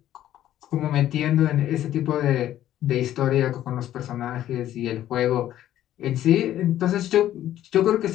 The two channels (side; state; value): right; quieter; 12.5 dB